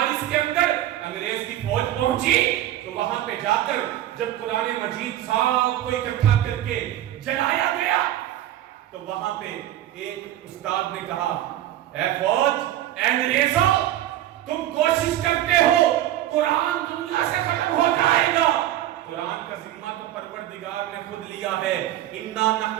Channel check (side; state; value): left; quieter; 13.1 dB